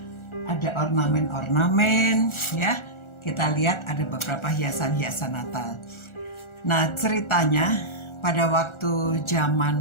ada ornamen-ornamen, ya? Kita lihat ada beberapa hiasan-hiasan Natal. Nah, ceritanya pada waktu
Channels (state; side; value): late; right; 1.4 ms